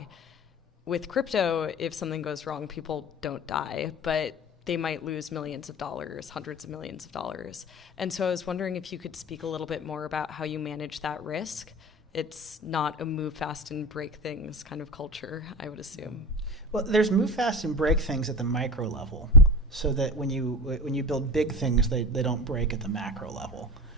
With crypto, if something goes wrong, people don't die, but they might lose millions of dollars, hundreds of millions of dollars. And so I was wondering if you could speak a little bit more about how you manage that risk. It's not a move fast and break things kind of culture, I would assume. Well, there's move fast and break things at the micro level, so that when you build big things, they don't break at the macro level.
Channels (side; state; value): both; normal; correlation 0.29